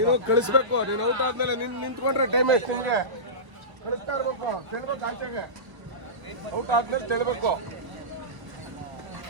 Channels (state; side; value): late; left; 1.0 ms